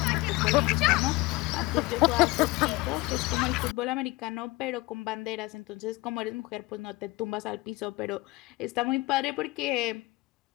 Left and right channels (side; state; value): right; quieter; 21.5 dB